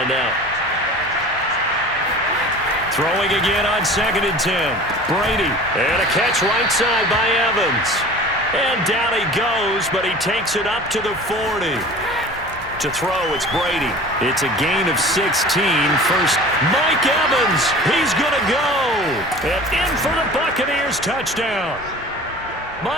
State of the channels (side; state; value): both; normal; correlation 0.41